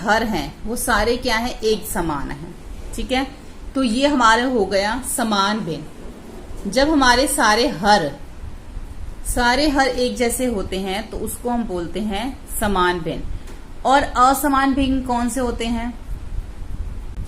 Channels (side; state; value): both; identical; correlation 1.00